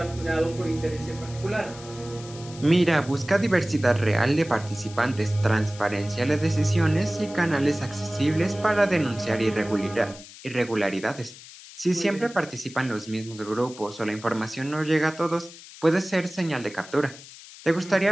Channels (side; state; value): left; noise; hiss, 17 dB below the sound